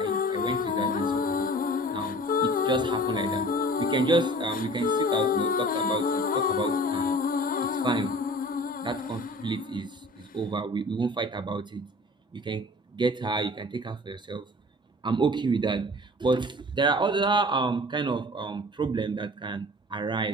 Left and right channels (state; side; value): normal; both; correlation 0.44